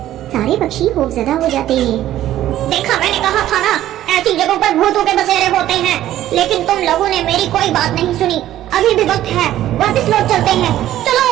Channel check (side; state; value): left; quieter; 13.1 dB